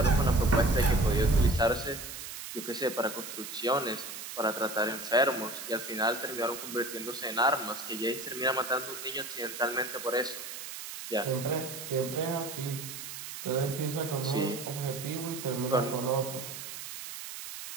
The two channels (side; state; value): right; noise; hiss, 9 dB below the sound